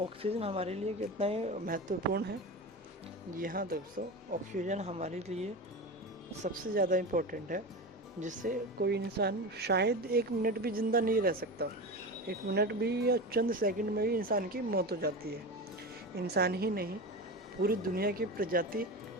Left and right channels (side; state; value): both; normal; correlation 0.25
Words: हमारे लिए कितना ही महत्वपूर्ण है? जी हाँ दोस्तों, ऑक्सीजन हमारे लिए सबसे ज़्यादा इम्पोर्टेंट है, जिससे कोई इंसान शायद 1 मिनट भी ज़िंदा नहीं रह सकता। 1 मिनट भी या चंद सेकंड में ही इंसान की मौत हो जाती है। इंसान ही नहीं, पूरी दुनिया की प्रजाति